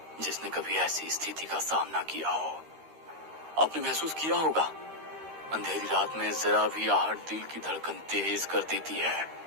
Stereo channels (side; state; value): left; late; 13 ms